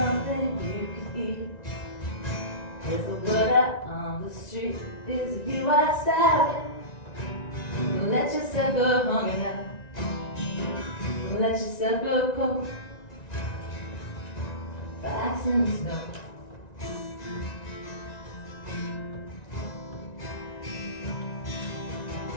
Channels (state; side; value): late; right; 1.9 ms